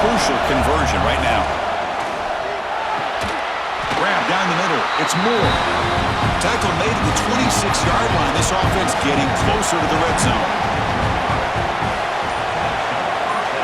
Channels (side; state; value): both; identical; correlation 1.00